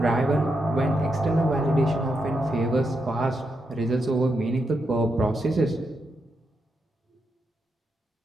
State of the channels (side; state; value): both; normal; correlation 0.83